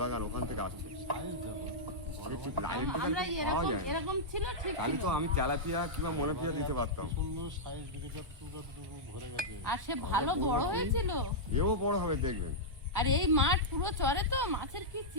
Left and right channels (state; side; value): late; left; 1.1 ms